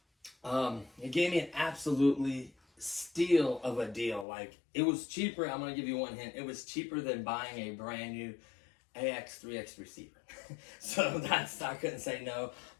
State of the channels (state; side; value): drops out; right; at 4.2 s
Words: it gave me an absolutely steal of a deal. Like, it was cheaper. I'm going to give you one hint. It was cheaper than buying a brand new AX3X receiver. So I couldn't say no.